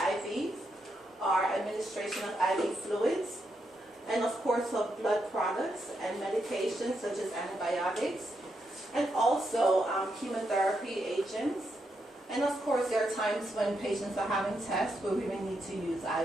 are administration of IV fluids, and of course of blood products and medications such as antibiotics, and also chemotherapy agents. And of course there are times when patients are having tests where we may need to use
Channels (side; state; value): both; normal; correlation 0.82